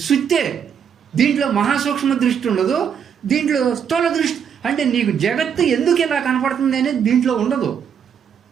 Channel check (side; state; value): left; quieter; 7.8 dB